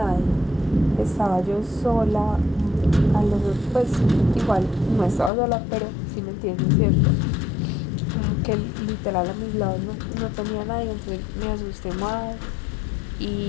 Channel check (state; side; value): drops out; right; at 5.3 s